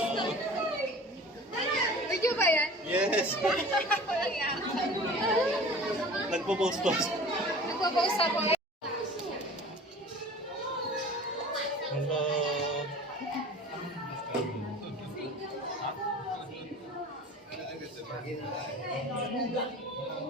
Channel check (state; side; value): normal; both; correlation 0.42